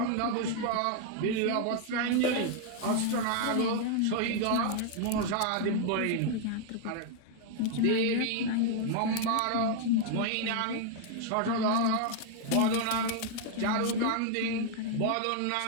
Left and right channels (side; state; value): both; different; correlation 0.00